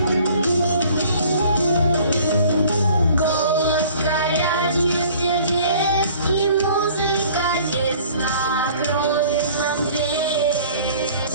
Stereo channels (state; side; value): inverted; both; correlation -0.52